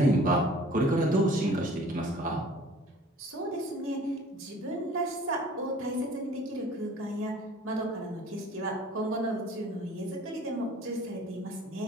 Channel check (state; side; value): normal; both; correlation 0.49